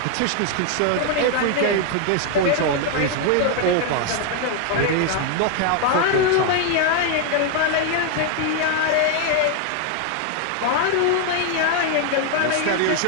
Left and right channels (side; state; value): both; different; correlation 0.00